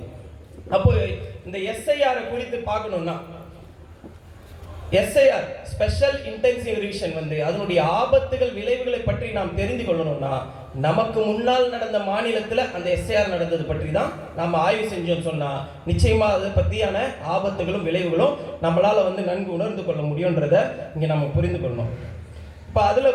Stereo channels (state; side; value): identical; both; correlation 1.00